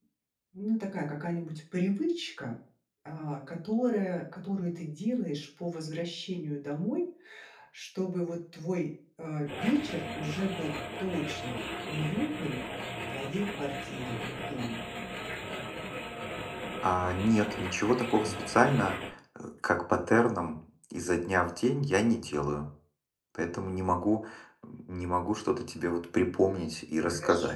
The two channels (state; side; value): identical; both; correlation 1.00